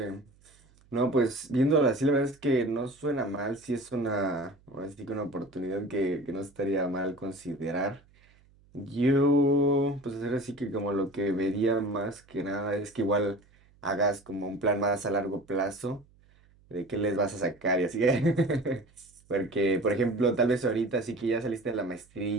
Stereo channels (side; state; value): right; noise; hum, 30 dB below the sound